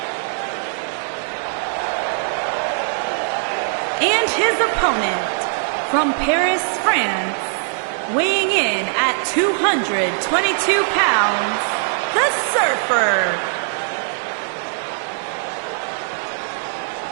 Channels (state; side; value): silent; left; digital silence